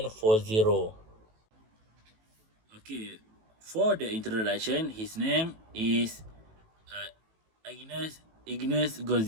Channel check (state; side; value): late; left; 18 ms